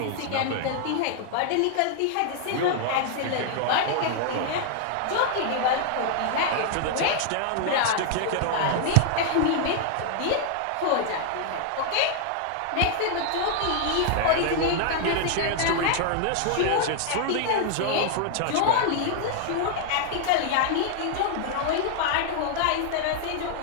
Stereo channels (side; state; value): both; different; correlation 0.00